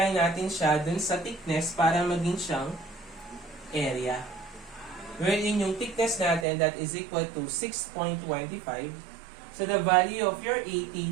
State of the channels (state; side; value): drops out; left; at 6.5 s